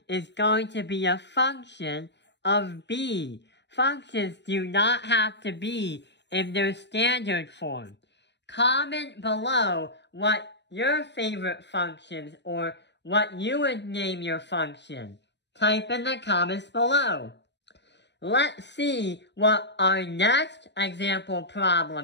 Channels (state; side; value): late; right; 0.51 ms